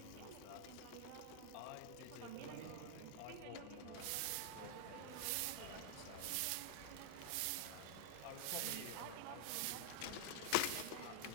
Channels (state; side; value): different; both; correlation 0.00